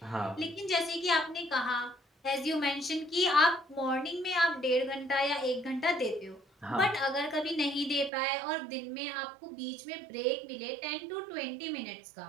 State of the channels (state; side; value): drops out; left; at 8.1 s